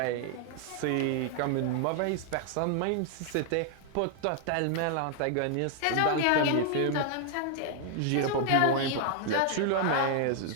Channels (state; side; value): different; both; correlation 0.00